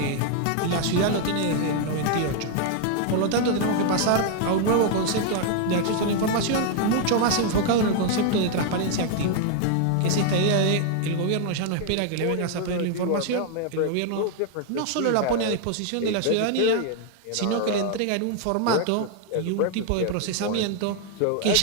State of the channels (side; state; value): both; different; correlation 0.00